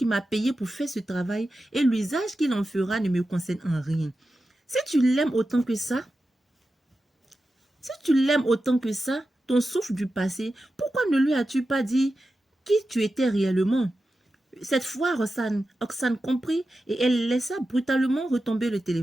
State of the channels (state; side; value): normal; both; correlation 0.92